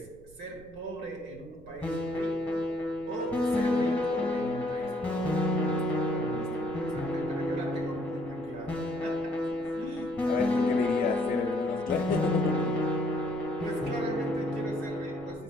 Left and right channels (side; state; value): right; noise; rumble, 23 dB below the sound